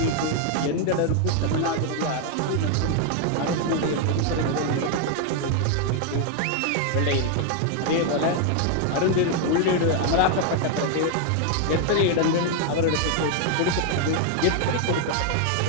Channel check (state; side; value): different; both; correlation 0.00